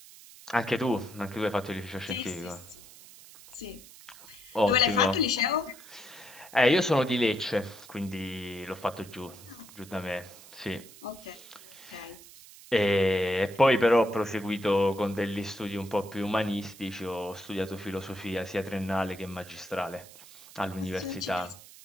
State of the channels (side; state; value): right; noise; hiss, 19 dB below the sound